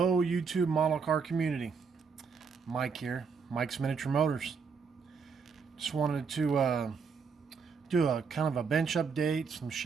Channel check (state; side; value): quieter; left; 5.6 dB